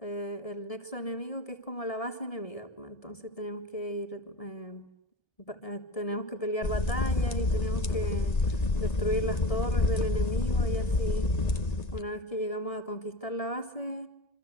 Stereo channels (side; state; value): right; late; 1.9 ms